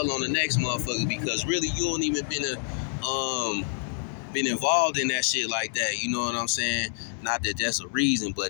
on the next motherfucker, because really you don't even been involved in that shit like that. You know what I'm saying? Not that that's a reason,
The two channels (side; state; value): right; silent; digital silence